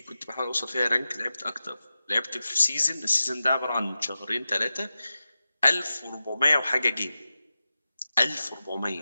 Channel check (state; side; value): inverted; both; correlation -0.93